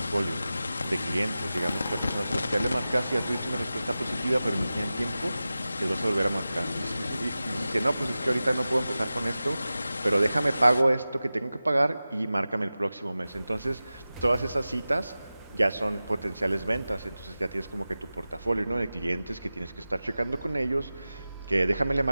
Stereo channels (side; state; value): both; inverted; correlation -0.95